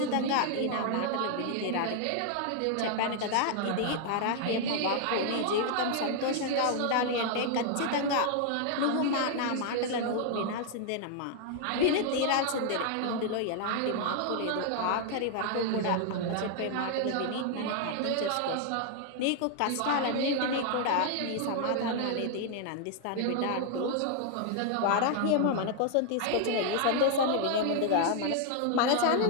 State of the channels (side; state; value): both; different; correlation 0.00